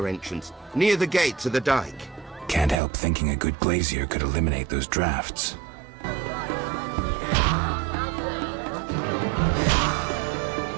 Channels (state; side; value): drops out; left; at 2.8 s